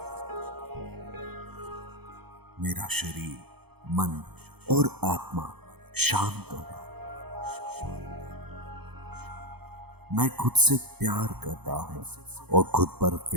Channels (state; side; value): late; left; 0.97 ms